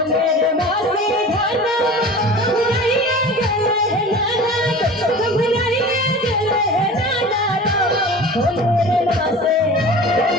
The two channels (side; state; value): both; normal; correlation 0.38